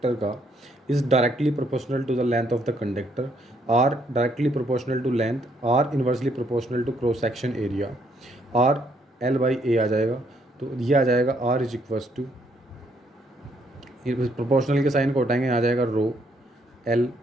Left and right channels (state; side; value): normal; both; correlation 0.71